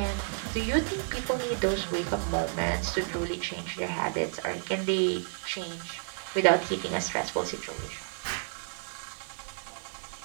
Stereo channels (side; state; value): left; silent; digital silence